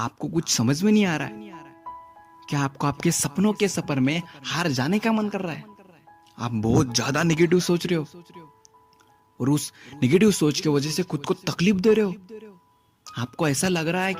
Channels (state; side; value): identical; both; correlation 1.00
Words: कुछ समझ में नहीं आ रहा है? क्या आपको आपके सपनों के सफर में हार जाने का मन कर रहा है? आप बहुत ज्यादा नेगेटिव सोच रहे हो और उस नेगेटिव सोच की वजह से खुद को तकलीफ दे रहे हो। आपको ऐसा लग रहा है